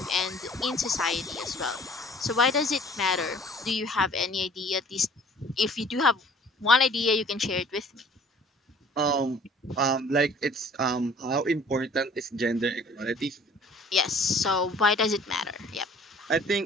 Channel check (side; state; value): both; normal; correlation 0.52